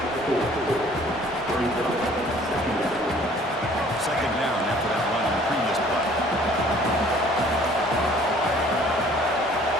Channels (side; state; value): both; normal; correlation 0.55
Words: Second down after that run on the previous play.